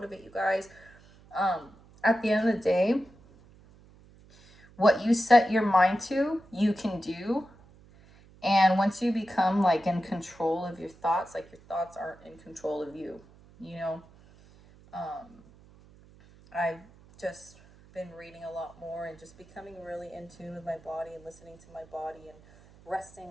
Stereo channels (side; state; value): right; noise; hum, 25 dB below the sound